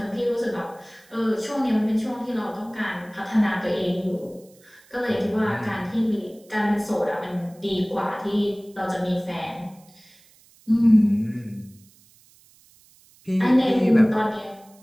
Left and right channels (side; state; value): right; noise; hiss, 28 dB below the sound